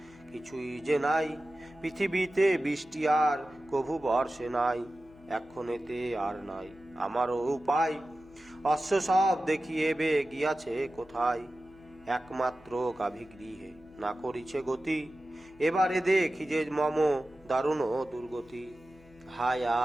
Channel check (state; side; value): noise; left; hum, 26 dB below the sound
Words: কিছুই যে নাই, পৃথিবীতে বৃষ্টি আর কভু বর্ষে নাই। এক্ষণেতে আর নাই আমারও উপায়, অশ্ব সব দেখিয়েবে গিয়াছে কোথায়। একমাত্র গাভী গৃহে না করিছে গতি, এবারে দেখি যে মম দারুণ দুর্গতি। হায়